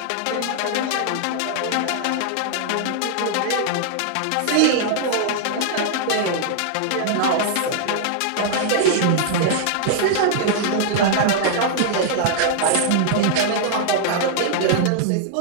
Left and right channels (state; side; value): different; both; correlation -0.01